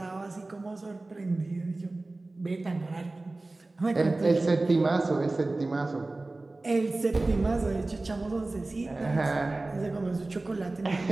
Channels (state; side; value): quieter; left; 3.1 dB